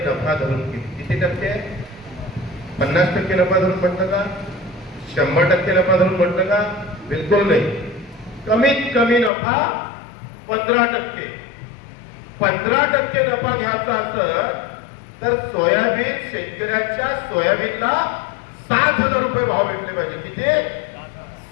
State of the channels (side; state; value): right; drops out; at 9.3 s